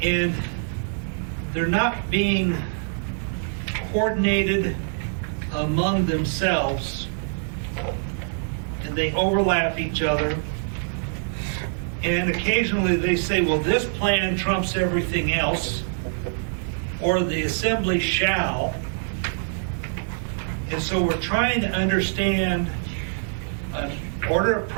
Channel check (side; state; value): left; silent; digital silence